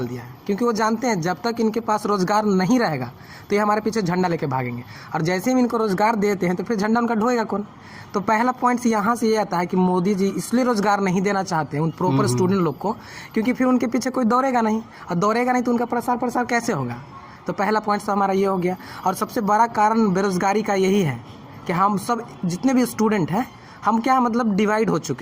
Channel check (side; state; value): both; identical; correlation 1.00